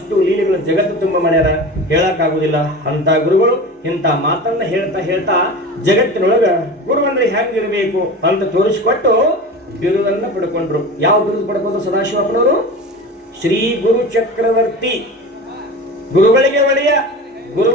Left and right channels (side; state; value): both; normal; correlation 0.32